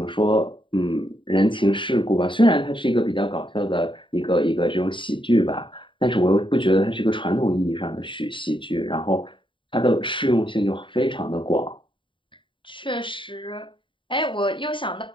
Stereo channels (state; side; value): late; right; 0.24 ms